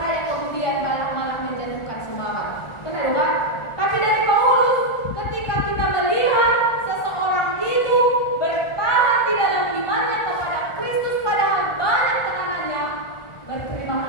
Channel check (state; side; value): late; right; 1.4 ms